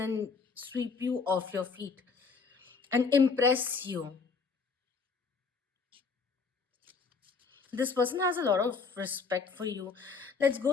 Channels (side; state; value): right; quieter; 4.9 dB